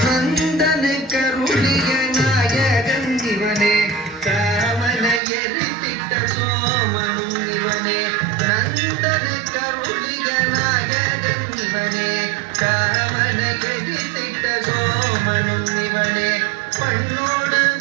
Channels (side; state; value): left; drops out; at 5.2 s